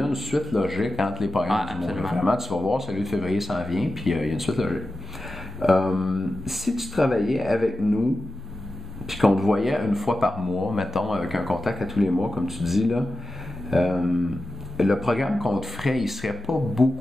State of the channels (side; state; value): both; normal; correlation 0.94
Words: a une suite logique entre les programmes du mois. Vraiment, tu vas voir, celui de février s'en vient, puis il y a une suite logique. Si tu travaillais avec nous, puis qu'on te voyait une fois par mois, mettons, avec un contact à tous les mois, comme tu dis, là, le programme qu'on te ferait, il serait pas